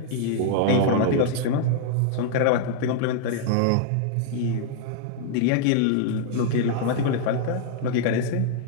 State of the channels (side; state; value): both; different; correlation -0.01